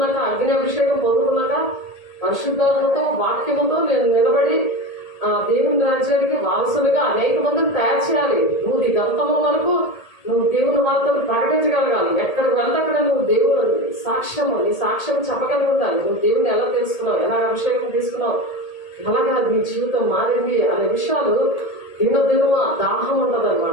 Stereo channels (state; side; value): late; right; 1.8 ms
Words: అగ్ని అభిషేకం పొందుకున్నాక పరిశుద్ధాత్మతో వాక్యముతో నేను నిలబడి దేవుని రాజ్యానికి వారసులుగా అనేక మందిని తయారు చేయాలి. నువ్వు నీ గంతము వరకు నువ్వు దేవుని వార్తను ప్రకటించగలగాలి. ఎక్కడికి వెళ్తే అక్కడ నువ్వు దేవుని నీ సాక్ష్యం చెప్పగలిగి ఉండాలి. నువ్వు దేవుని ఎలా తెలుసుకున్నావు, ఎలా అభిషేకం తీసుకున్నావు, ఎలాగా నీ జీవితం మారింది అనే విషయాలు దినదినము దాహం ఉంటుంది